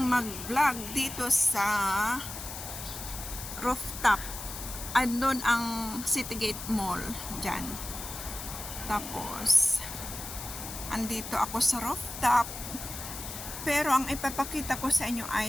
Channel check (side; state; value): left; noise; hiss, 9 dB below the sound